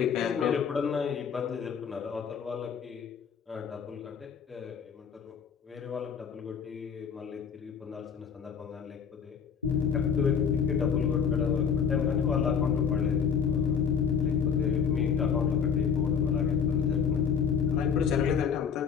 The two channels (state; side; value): quieter; right; 6.9 dB